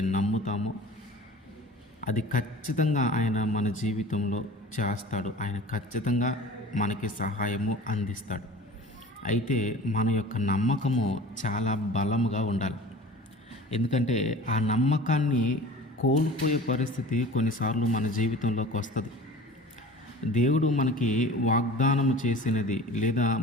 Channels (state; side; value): normal; both; correlation 0.40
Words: నమ్ముతామో అది ఖచ్చితంగా ఆయన మన జీవితంలో చేస్తాడు. ఆయన ఖచ్చితంగా మనకి సహాయము అందిస్తాడు. అయితే మన యొక్క నమ్మకము చాలా బలముగా ఉండాలి. ఎందుకంటే ఆ నమ్మకాన్ని కోల్పోయే పరిస్థితి కొన్నిసార్లు మన జీవితంలోకి వస్తుంది. దేవుడు మనకి వాగ్దానము చేసినది, లేదా